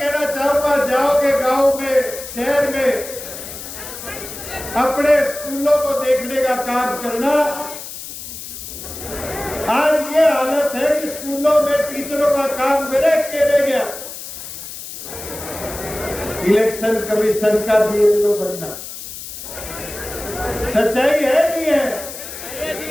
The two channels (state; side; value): noise; left; hiss, 11 dB below the sound